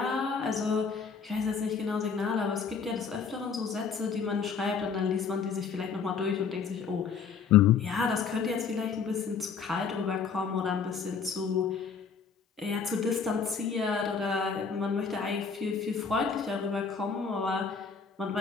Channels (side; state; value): right; quieter; 5.9 dB